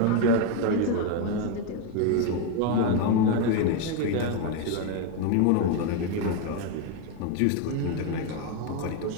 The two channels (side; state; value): both; different; correlation 0.02